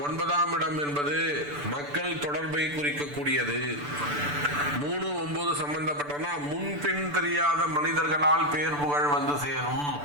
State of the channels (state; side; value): late; left; 6.9 ms